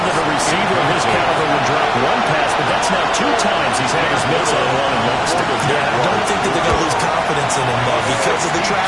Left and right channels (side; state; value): both; identical; correlation 1.00